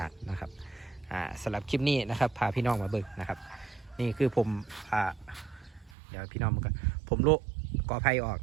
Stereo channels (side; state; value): left; drops out; at 6.0 s